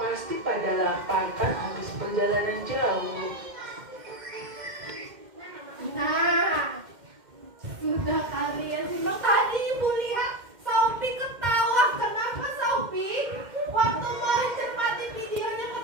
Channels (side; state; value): left; late; 2.1 ms